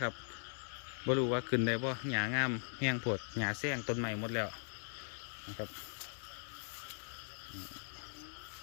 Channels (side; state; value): right; silent; 51 dB below the other